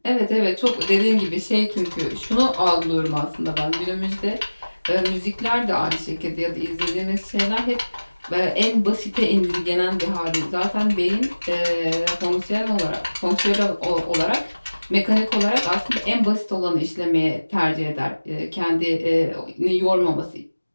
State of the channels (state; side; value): inverted; both; correlation -1.00